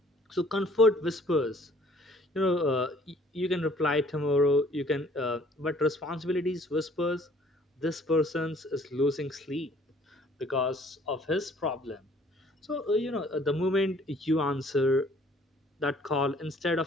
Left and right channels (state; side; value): normal; both; correlation 0.57